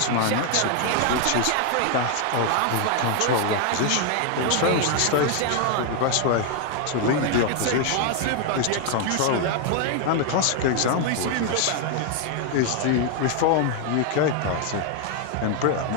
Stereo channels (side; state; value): both; different; correlation 0.00